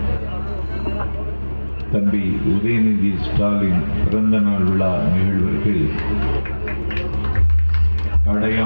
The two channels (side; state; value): both; inverted; correlation -1.00